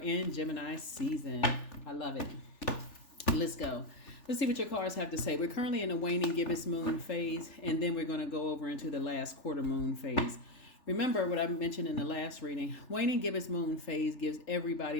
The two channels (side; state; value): right; late; 3.4 ms